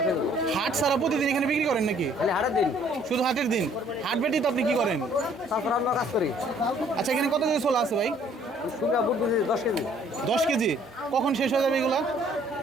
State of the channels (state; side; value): normal; both; correlation 0.60